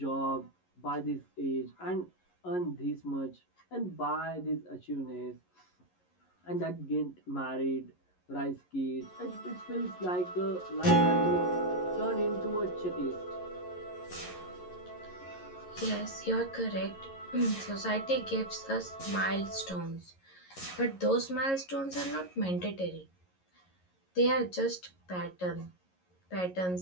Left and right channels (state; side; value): late; right; 11 ms